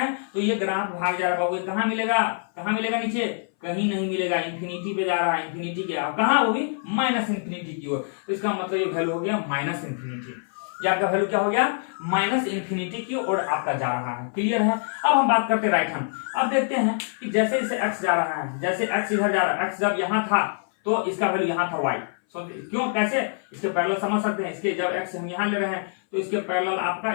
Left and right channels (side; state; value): right; silent; 60 dB below the other